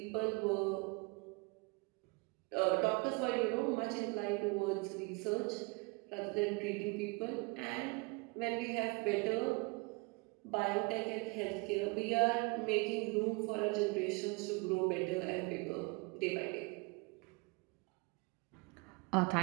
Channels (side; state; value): left; quieter; 28.0 dB